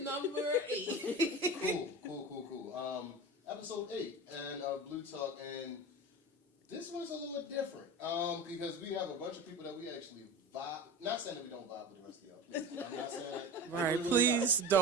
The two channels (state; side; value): normal; both; correlation 0.31